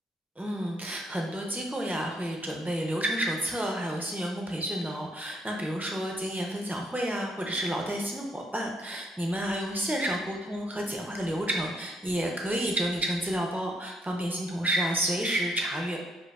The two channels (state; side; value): normal; both; correlation 0.72